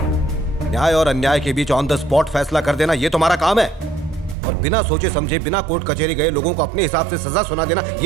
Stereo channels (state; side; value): drops out; left; at 4.4 s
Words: न्याय और अन्याय के बीच ऑन द स्पॉट फैसला कर देना ये तुम्हारा काम है, और बिना सोचे समझे बिना कोर्ट कचहरी गए लोगों को अपने हिसाब से सजा सुना देना